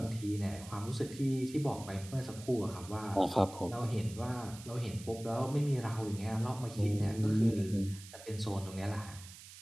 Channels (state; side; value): noise; right; hiss, 16 dB below the sound